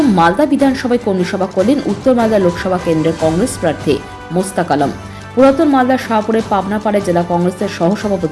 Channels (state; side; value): identical; both; correlation 1.00